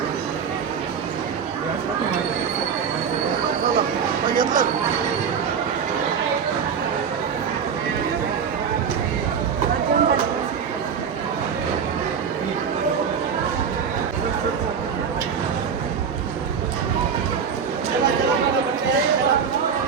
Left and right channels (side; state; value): left; quieter; 6.8 dB